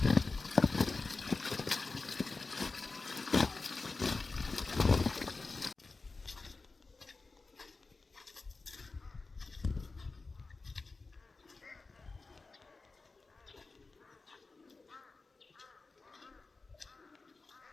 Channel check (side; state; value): right; quieter; 3.8 dB